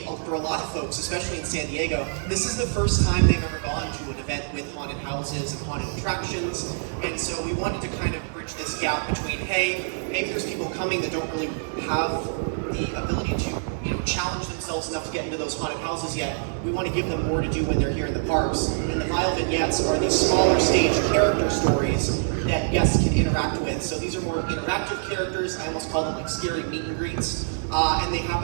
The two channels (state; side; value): silent; left; digital silence